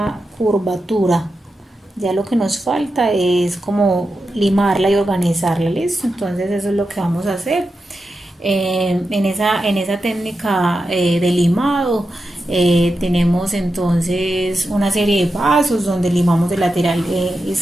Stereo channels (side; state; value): both; normal; correlation 0.89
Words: curvatura. Ya lo que nos falta es como limarla y organizarla, ¿listo? Entonces eso es lo que vamos a hacer. En esa técnica de limado tenemos entonces una serie de pasos donde limamos el lateral